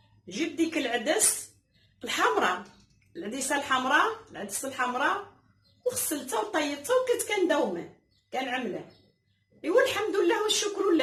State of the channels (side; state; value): both; identical; correlation 1.00